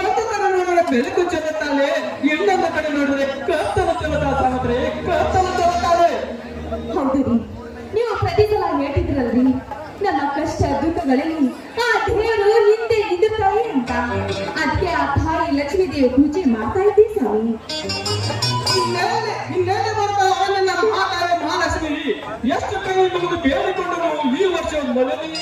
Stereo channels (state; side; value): identical; both; correlation 1.00